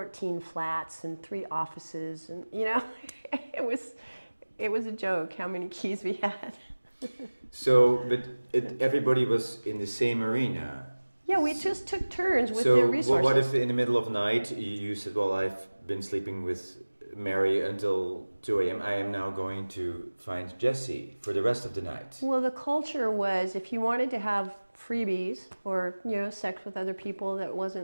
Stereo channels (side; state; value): both; inverted; correlation -1.00